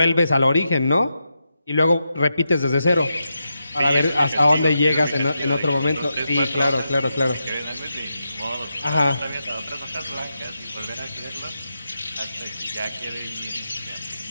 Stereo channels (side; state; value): both; inverted; correlation -0.87